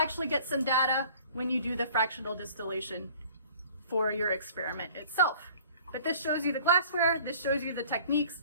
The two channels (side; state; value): both; inverted; correlation -0.51